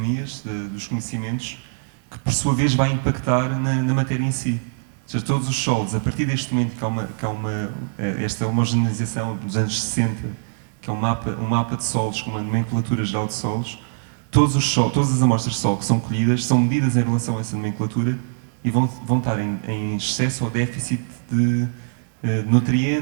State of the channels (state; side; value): silent; left; digital silence